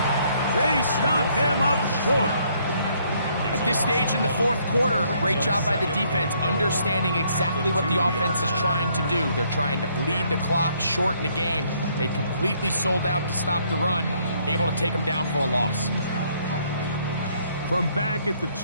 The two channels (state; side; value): inverted; both; correlation -0.67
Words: They stop him up short. At this stage in the fourth quarter, great job by the defense, understanding exactly what the offense is trying to do. They're trying to bleed the clock, shorten the game. They completely sold out to stop the run, able to take them down for a loss. From back at the